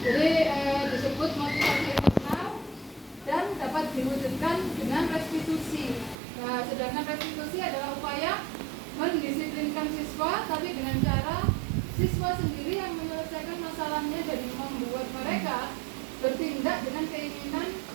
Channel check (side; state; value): left; drops out; at 6.2 s